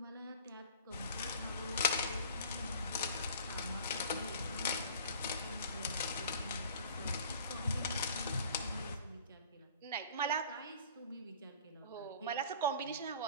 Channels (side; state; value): both; inverted; correlation -0.46